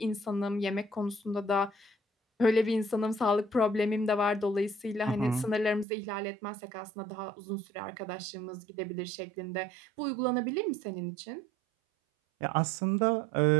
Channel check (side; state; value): left; drops out; at 5.9 s